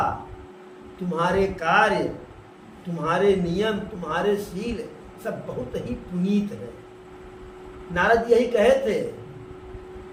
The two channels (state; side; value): identical; both; correlation 1.00